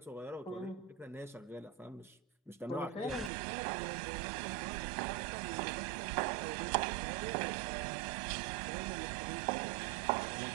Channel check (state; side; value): drops out; left; at 3.3 s